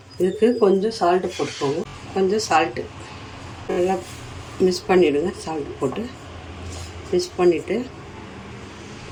இதுக்கு கொஞ்சம் சால்ட்டு போட்டுக்கோங்க. கொஞ்சம் சால்ட்டு நல்லா மிக்ஸ் பண்ணிவிடுங்க. சால்ட்டு போட்டு மிக்ஸ் பண்ணிவிட்டு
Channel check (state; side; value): identical; both; correlation 1.00